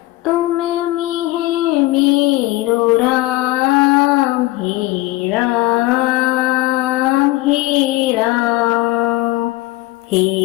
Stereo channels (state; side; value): quieter; right; 18.7 dB